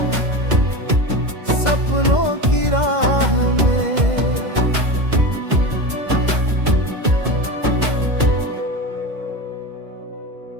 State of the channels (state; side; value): late; left; 2.0 ms